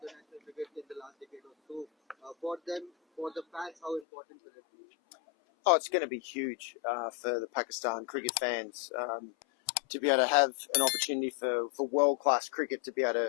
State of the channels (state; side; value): drops out; right; at 4.0 s